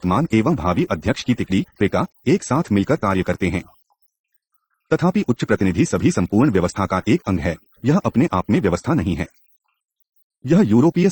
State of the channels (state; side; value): identical; both; correlation 1.00